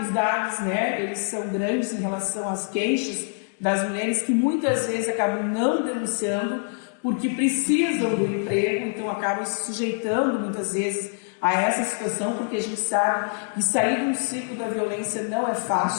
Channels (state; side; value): silent; right; 62 dB below the other